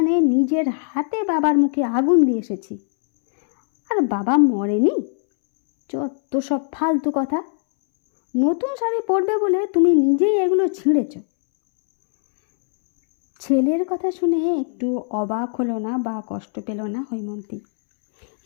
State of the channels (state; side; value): silent; right; 65 dB below the other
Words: নিজের হাতে বাবার মুখে আগুন দিয়ে এসেছি, আর বাবা মরেনি। যত সব ফালতু কথা। নতুন শাড়ি পরবে বলে তুমি নিজেই এগুলো ছিঁড়েছ। ছেলের কথা শুনে একটু অবাক হলো না বা কষ্ট পেল না হৈমন্তী।